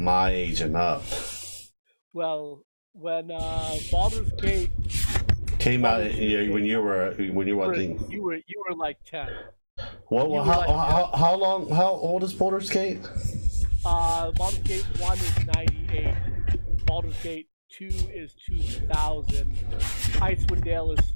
age and up. Well, when Baldur's Gate came out when you were I think you were like 10. Well, how old is Baldur's Gate? Baldur's Gate 1 is 98. Baldur's Gate 2 is 2000. Icewind Dale is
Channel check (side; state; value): both; inverted; correlation -1.00